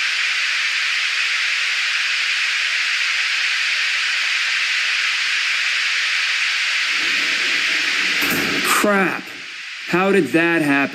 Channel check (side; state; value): both; identical; correlation 1.00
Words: Crap! How did that